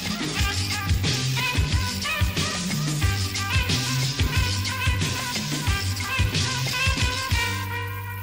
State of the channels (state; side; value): identical; both; correlation 1.00